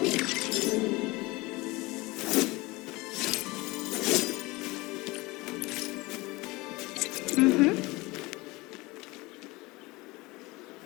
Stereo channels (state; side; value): quieter; right; 22.4 dB